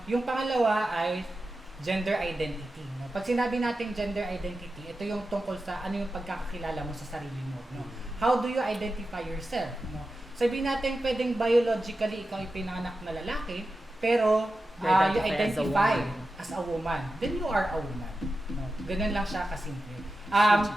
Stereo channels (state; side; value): normal; both; correlation 0.92